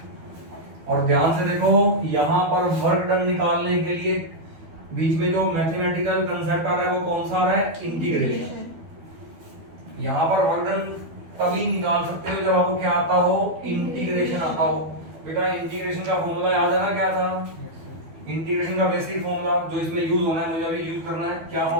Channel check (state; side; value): late; left; 12 ms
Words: और ध्यान से देखो, यहां पर वर्क डन निकालने के लिए बीच में जो मैथमेटिकल कंसेप्ट आ रहा है वो कौन सा आ रहा है, इंटीग्रेशन। यहां पर वर्क डन तभी निकाल सकते हो जब आपको क्या आता हो, इंटीग्रेशन आता हो। बेटा इंटीग्रेशन का फॉर्मूला याद है ना, क्या था, इंटीग्रेशन का बेसिक फॉर्मूला जो इसमें यूज होना है, मुझे अभी यूज करना है। क्या